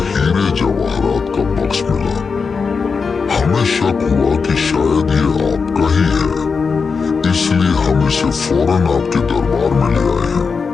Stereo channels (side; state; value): right; quieter; 5.2 dB